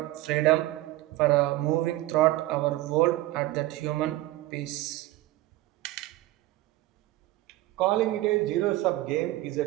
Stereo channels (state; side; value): quieter; left; 17.3 dB